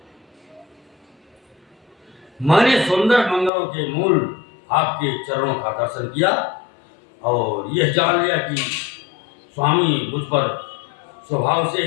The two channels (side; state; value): right; drops out; at 3.5 s